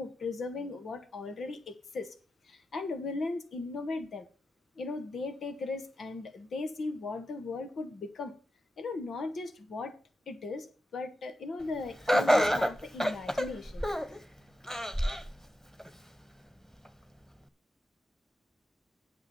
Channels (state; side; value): normal; both; correlation 0.89